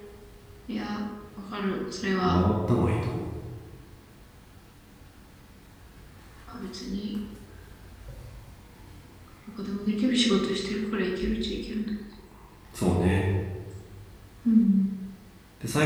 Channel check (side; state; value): both; identical; correlation 1.00